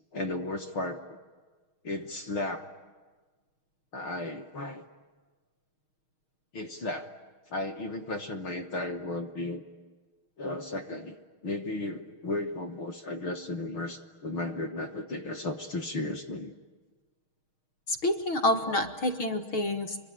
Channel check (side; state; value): right; late; 6.4 ms